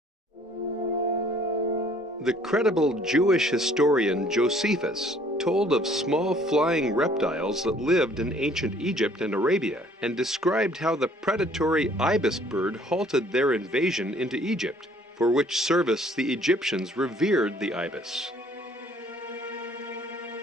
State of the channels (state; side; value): normal; both; correlation 0.58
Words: The credible Jewish historian Josephus told of small flying reptiles that lived in ancient Egypt and Arabia, and described how the predatory ibis bird halted their invasion into Egypt, for which service the Egyptians revered the ibis.